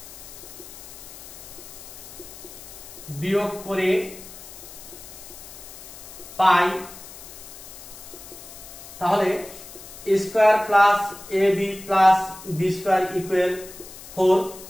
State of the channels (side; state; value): left; noise; hiss, 15 dB below the sound